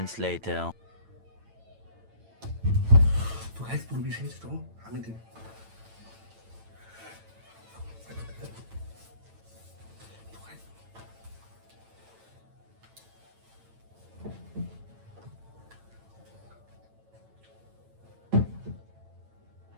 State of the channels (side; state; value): left; late; 8.9 ms